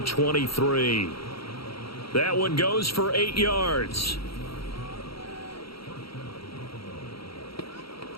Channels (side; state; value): right; late; 0.75 ms